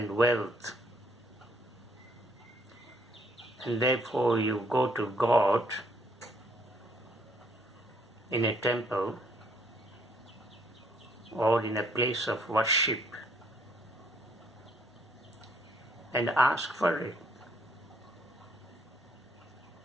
wealth. And therefore you go to God in a temple or in a place of worship and ask for it.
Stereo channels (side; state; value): both; normal; correlation 0.67